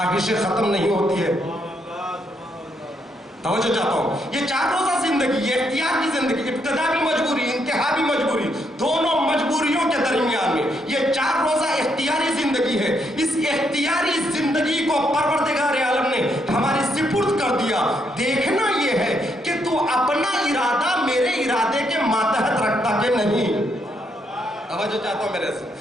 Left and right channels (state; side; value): normal; both; correlation 0.76